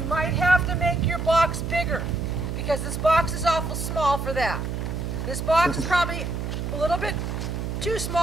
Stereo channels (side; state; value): right; noise; hum, 3 dB below the sound